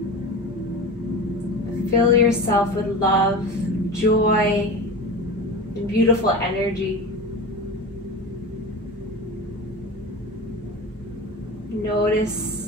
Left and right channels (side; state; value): both; normal; correlation 0.30